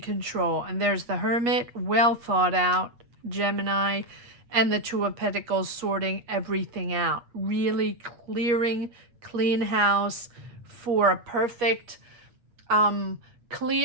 And there's the Hermit, well thought out, Gemini, and the Two of Pentacles sorting everything out. Really clearing, clean house for a perfect,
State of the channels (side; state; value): left; late; 8.3 ms